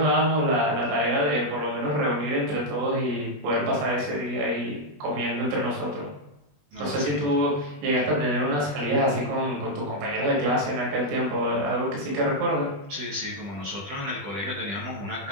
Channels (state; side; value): late; left; 20 ms